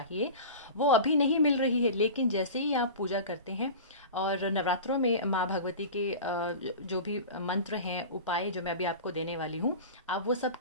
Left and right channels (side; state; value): both; inverted; correlation -0.33